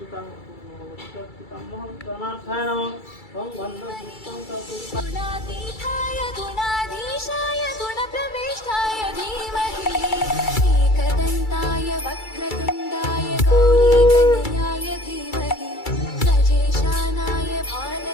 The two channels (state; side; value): late; right; 2.3 ms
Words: गुणातीताय गुणाधीशाय गुणप्रविष्टाय धीमहि एकदन्ताय वक्रतुण्डाय गौरीतनयाय धीमहि गजेशानाय